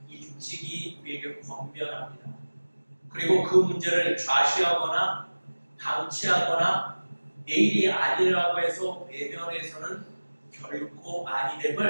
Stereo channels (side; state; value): both; inverted; correlation -1.00